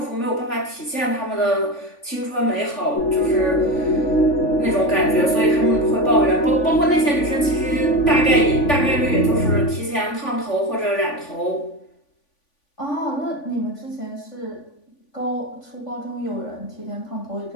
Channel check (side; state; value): right; late; 3.5 ms